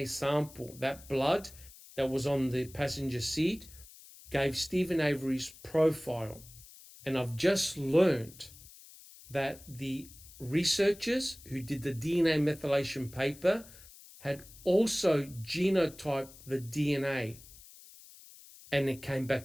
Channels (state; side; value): noise; left; hiss, 20 dB below the sound